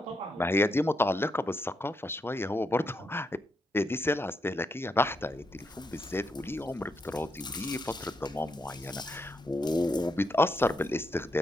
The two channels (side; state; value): both; normal; correlation 0.80